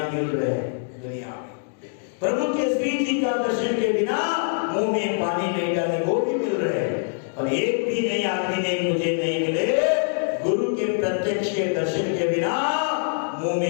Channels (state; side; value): silent; right; digital silence